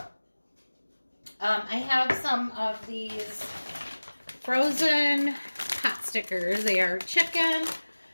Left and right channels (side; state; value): both; inverted; correlation -1.00